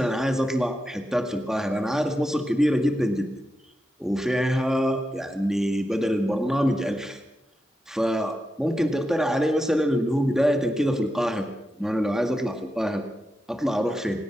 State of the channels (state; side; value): normal; both; correlation 0.88